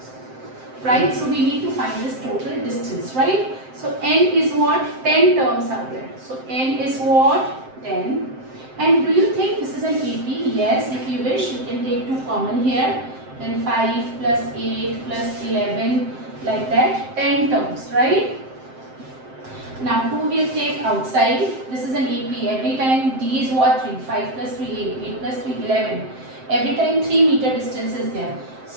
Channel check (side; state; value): left; late; 7.7 ms